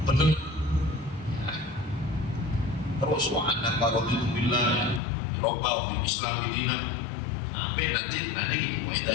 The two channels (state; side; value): drops out; right; at 5.0 s